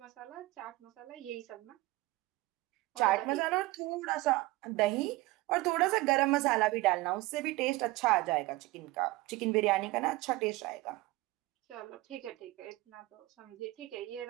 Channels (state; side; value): quieter; left; 19.8 dB